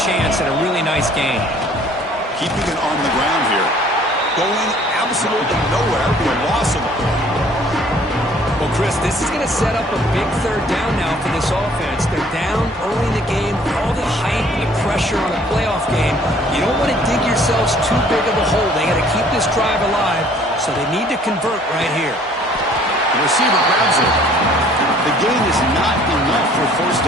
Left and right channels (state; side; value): normal; both; correlation 0.56